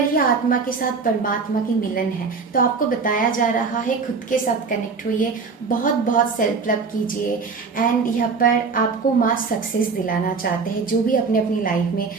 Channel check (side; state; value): left; quieter; 4.9 dB